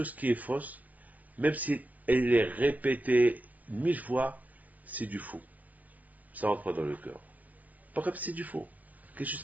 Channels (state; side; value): late; left; 0.079 ms